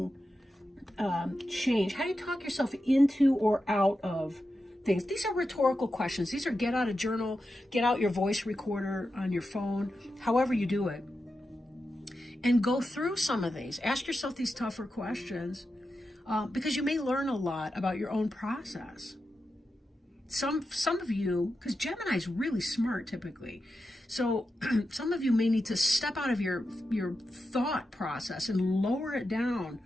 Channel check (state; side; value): normal; both; correlation 0.90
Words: change? How do you talk yourself into or out of things? These are rhetorical questions. These are get out a journal, get out your voice recorder on your phone, however you do it. And go through some of these. Ask yourself these tougher questions because you may learn a lot about your own process. Some of you, because Gemini is really smart typically, so some of you may need to step out of your thought process and lower it down,